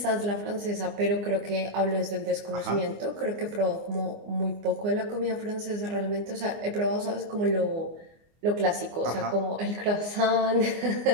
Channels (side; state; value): left; late; 24 ms